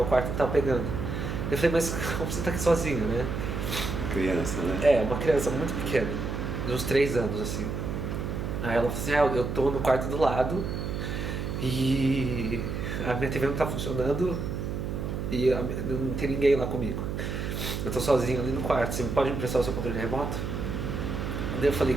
quarto não tava pegando. Eu falei, mas como você tá aqui sozinho, né? Criança, né? É, uma criança muito pequena, de uns 3 anos, assim. Aí ela falou assim, eu tô no quarto do lado e a minha TV não tá funcionando e não tem ninguém lá comigo. Eu tô sozinho ali no quarto, você pode me emprestar o seu controle remoto? Daí eu falei,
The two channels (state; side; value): noise; right; hum, 3 dB below the sound